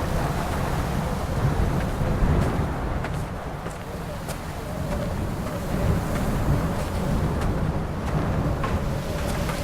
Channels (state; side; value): identical; both; correlation 1.00